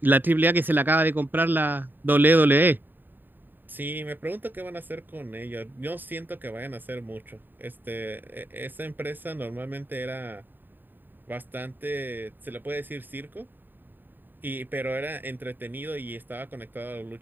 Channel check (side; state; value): left; late; 0.092 ms